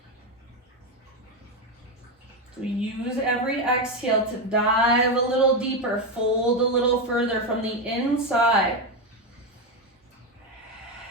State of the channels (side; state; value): both; normal; correlation 0.10